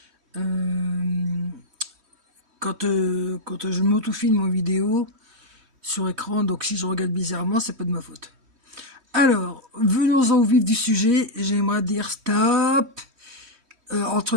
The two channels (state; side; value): late; left; 3.1 ms